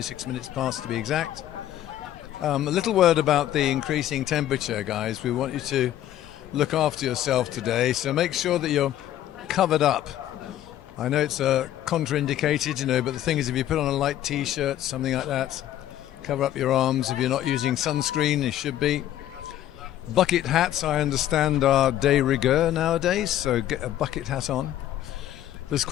minutes past to be exact. A little word about the increasing temperature, guys. We want you to look after yourself today, so make sure that you're covered up. I know it's contraindicated, but the thing is, if you put on a light t-shirt, something like that, cover up your arms. If you're not using sunscreen, you should be. Bucket hats, I understand, are de rigueur nowadays, so get a bucket hat on. There's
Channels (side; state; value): right; quieter; 12.4 dB